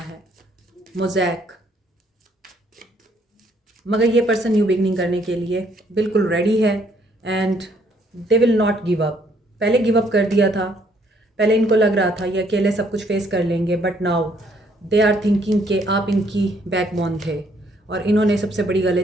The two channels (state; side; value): normal; both; correlation 0.67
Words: मोज़ैक। मगर ये पर्सन न्यू बिगनिंग करने के लिए बिल्कुल रेडी है and they will not give up. पहले गिव अप कर दिया था, पहले इनको लग रहा था ये अकेले सब कुछ फेस कर लेंगे, but now they are thinking कि आप इनकी बैकबोन थे और इन्होंने सबसे बड़ी